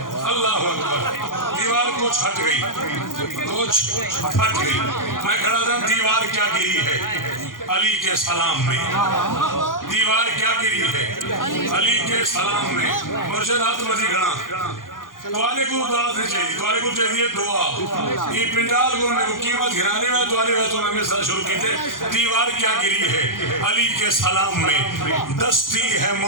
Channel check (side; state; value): right; late; 0.90 ms